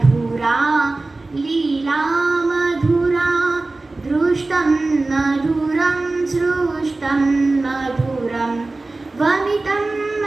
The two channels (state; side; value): quieter; left; 3.2 dB